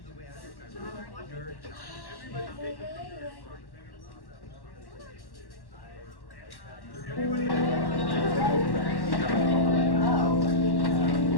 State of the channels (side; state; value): right; late; 1.1 ms